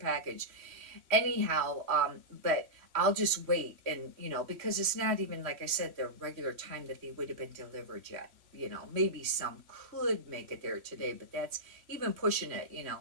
Anyhow, but I'll just wait, and because it's not even, like I said, the regular time that they would have been delivered yet. Maybe some could make it there today, but that's even pushing it.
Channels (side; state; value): left; late; 3.1 ms